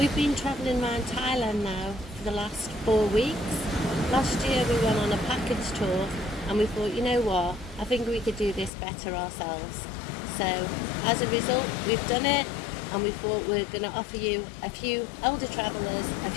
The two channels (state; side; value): drops out; right; at 8.7 s